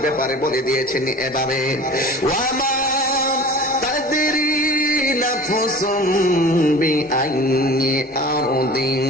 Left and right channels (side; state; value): both; normal; correlation 0.40